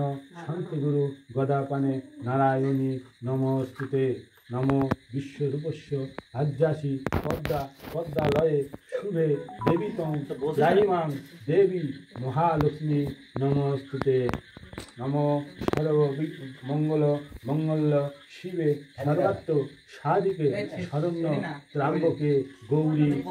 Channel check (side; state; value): both; identical; correlation 1.00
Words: শান্তিগুরু গদাপানে নারায়ণী নমস্তুতে নম বিশ্বরূপস্য আজ্যাসি পদ্মা পদ্মালয়ে শুভে দেবীতং জাহিমাং দেবী মহালক্ষ্মী নমস্তুতে নম সর্ব মঙ্গল মঙ্গল শিবে সর্বাত্ম সাধিকে শরণ্য ত্রাম্বকে গৌরী